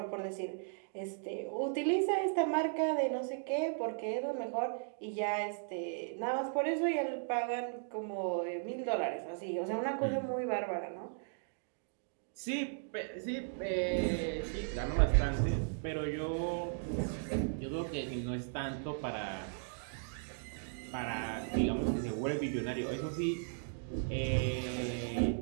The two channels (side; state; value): left; silent; digital silence